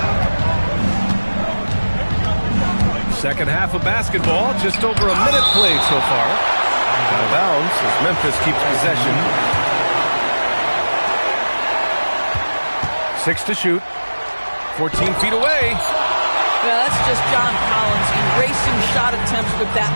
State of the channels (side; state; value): both; inverted; correlation -1.00